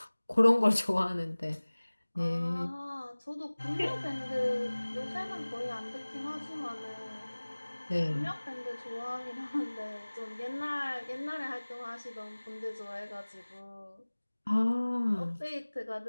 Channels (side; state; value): both; inverted; correlation -1.00